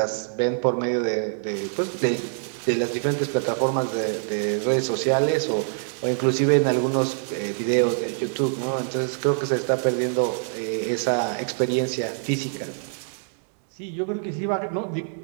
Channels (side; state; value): left; silent; 62 dB below the other